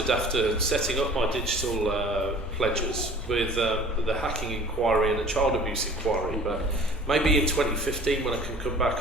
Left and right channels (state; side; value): normal; both; correlation 0.47